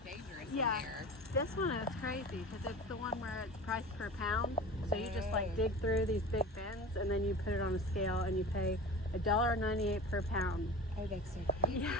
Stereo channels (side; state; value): both; normal; correlation 0.34